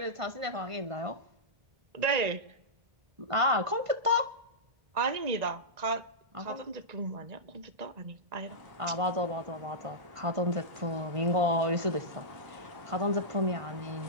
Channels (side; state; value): left; late; 1.5 ms